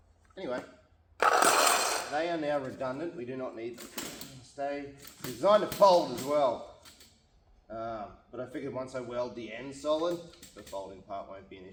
Anyway, they are now redundant. We do not need them. Stay designed to fold as well. But I figured once I weld the end solid, the folding part won't be an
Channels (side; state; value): both; identical; correlation 1.00